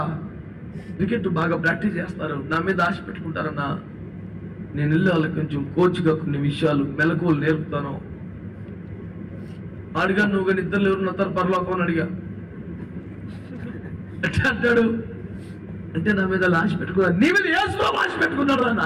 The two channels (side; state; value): both; identical; correlation 1.00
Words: క్రికెట్ బాగా ప్రాక్టీస్ చేస్తారు, నా మీద ఆశ పెట్టుకుంటారన్నా. నేను వెళ్ళి వాళ్ళకి కొంచెం కోచ్గా కొన్ని విషయాలు మెలకువలు నేర్పుతాను. అడిగా, నువ్వు కానీ ఇద్దరు ఎవరు నస్తారు పరలోకం అని అడిగా. ఎట్లా అంటాడు అంటే, నా మీద ఆశ పెట్టుకున్నాడు. నీ మీద యేసు ఆశ పెట్టుకున్నాడు రా